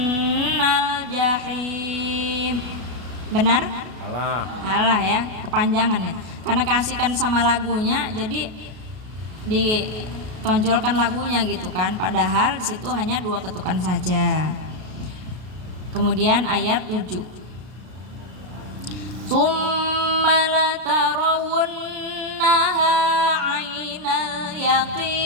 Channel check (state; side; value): late; left; 32 ms